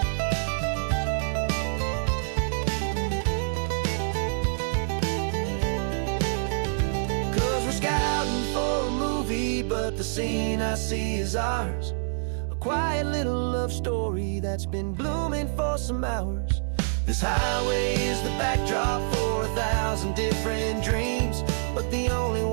But the scene I see is ours. A quiet little love story that's been blooming for some hours. This highway is the backdrop for 1,000 different dreams, but the only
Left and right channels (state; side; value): silent; left; digital silence